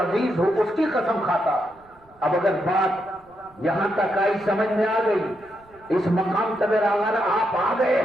ہو, اس کی قسم کھاتا. اب اگر بات یہاں تک آئی, سمجھ میں آ گئی, اس مقام تک اگر آپ آ گئے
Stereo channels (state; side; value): noise; right; rumble, 29 dB below the sound